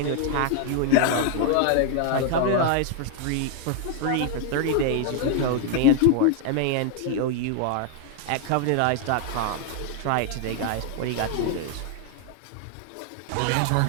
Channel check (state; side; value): different; both; correlation 0.00